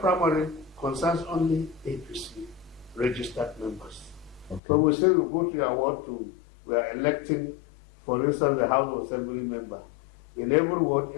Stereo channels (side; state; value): right; drops out; at 4.6 s